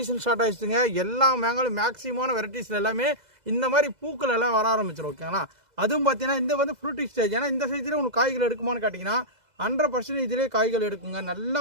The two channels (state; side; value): late; left; 2.0 ms